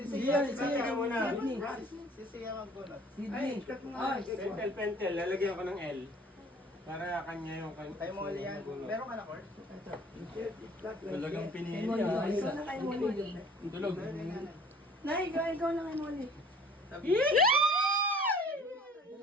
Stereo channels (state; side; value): normal; both; correlation 0.51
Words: Siya, Siya ka muna. Si Siya magbunot. Sydney. Pentel, lalagyan ko ng L. Para kanya yung kanya. Kay Molly yan. Meron ka na, Kurt? Talagang pinili Molly, niya. ikaw na kay Molly. Tulog. Nay, ikaw na kay Molly.